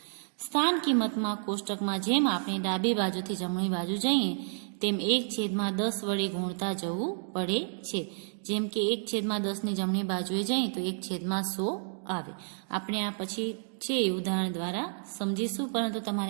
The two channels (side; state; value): left; silent; digital silence